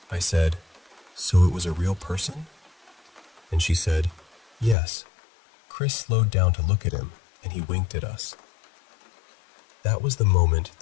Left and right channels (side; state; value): right; drops out; at 4.8 s